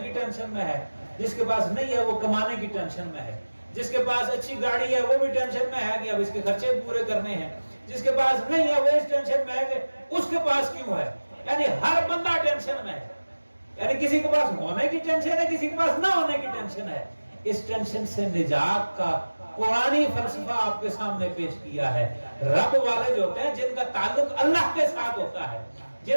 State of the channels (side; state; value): both; inverted; correlation -1.00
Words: کی ٹینشن میں ہے, جس کے پاس نہیں ہے وہ کمانے کی ٹینشن میں ہے, جس کے پاس اچھی گاڑی ہے وہ بھی ٹینشن میں ہے کہ اب اس کے خرچے پورے کرنے ہیں, جس کے پاس نہیں ہے وہ اس ٹینشن میں ہے کہ اس کے پاس کیوں ہے. یعنی ہر بندہ ٹینشن میں ہے, یعنی کسی کے پاس ہونے کی ٹینشن ہے, کسی کے پاس نہ ہونے کی ٹینشن ہے. اس ٹینشن سے نجات کا قرآنی فلسفہ آپ کے سامنے پیش کیا ہے۔ رب والے جو ہوتے ہیں جن کا تعلق اللہ کے ساتھ ہوتا ہے،